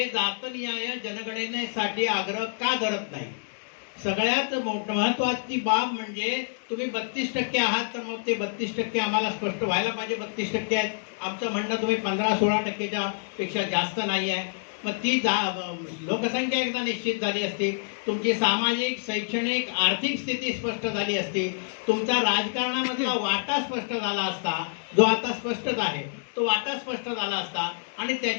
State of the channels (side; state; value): right; silent; digital silence